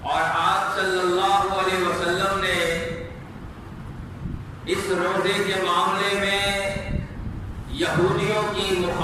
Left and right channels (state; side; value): identical; both; correlation 1.00